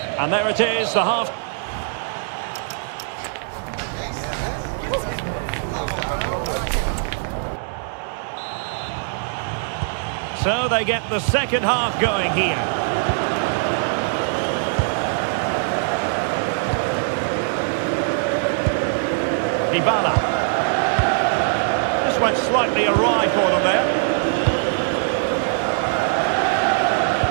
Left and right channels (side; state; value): left; silent; digital silence